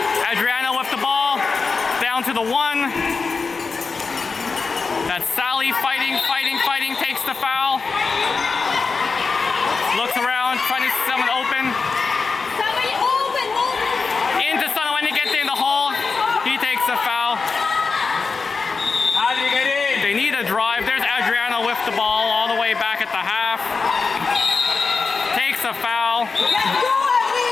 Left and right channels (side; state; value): right; quieter; 4.6 dB